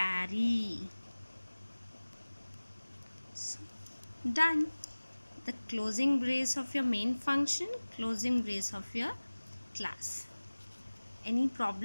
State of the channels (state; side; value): inverted; both; correlation -1.00